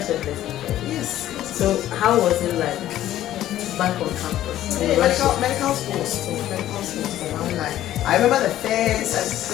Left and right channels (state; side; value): quieter; right; 13.1 dB